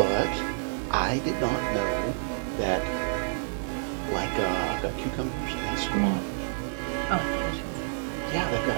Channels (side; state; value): left; silent; 59 dB below the other